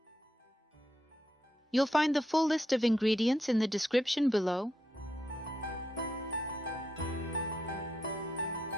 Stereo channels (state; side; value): normal; both; correlation 0.81